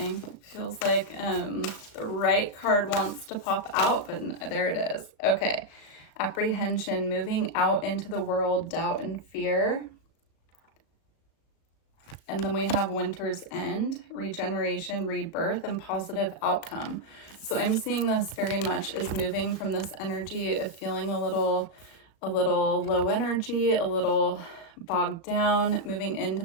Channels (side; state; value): right; late; 36 ms